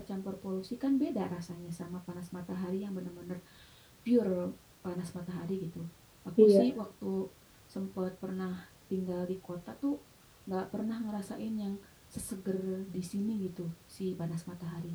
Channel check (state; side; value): identical; both; correlation 1.00